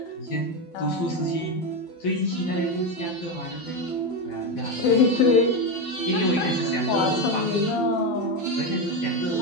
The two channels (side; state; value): right; late; 12 ms